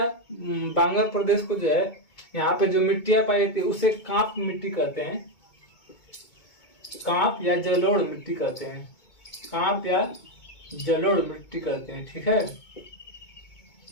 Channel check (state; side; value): late; right; 2.2 ms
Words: बांगर प्रदेश को जो है यहाँ पे जो मिट्टियां पाई जाती है उसे कांप मिट्टी कहते हैं, कांप या जलोढ़ मिट्टी कहते हैं, कांप या जलोढ़ मिट्टी कहते हैं, ठीक है।